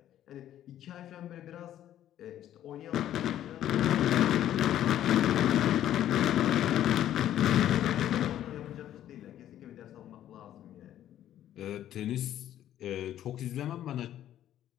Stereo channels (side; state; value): right; quieter; 11.8 dB